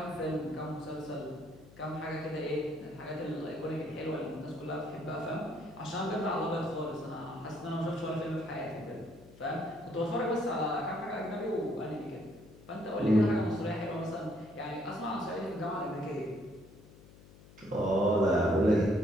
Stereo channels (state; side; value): noise; left; hum, 21 dB below the sound